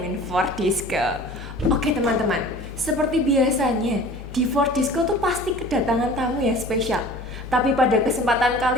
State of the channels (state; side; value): normal; both; correlation 0.44